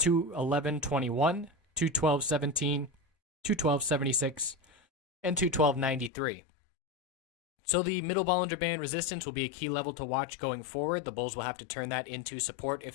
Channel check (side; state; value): right; drops out; at 6.1 s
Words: 212.17, 212.76, and 212.93. So the middle Bollinger Band resistance will be a key level to watch going forward. The bulls will have to turn that into support